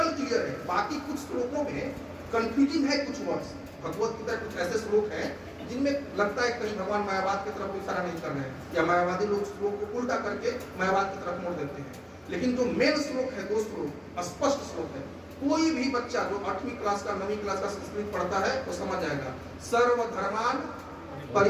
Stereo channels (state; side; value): identical; both; correlation 1.00